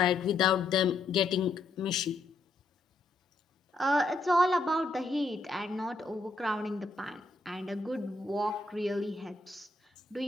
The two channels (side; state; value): right; quieter; 3.2 dB